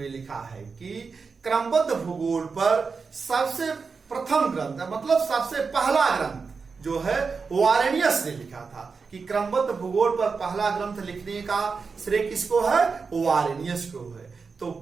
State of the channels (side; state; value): left; quieter; 4.9 dB